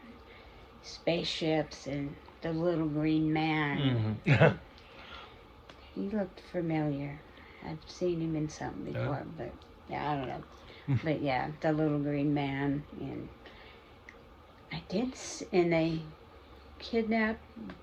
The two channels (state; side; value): identical; both; correlation 1.00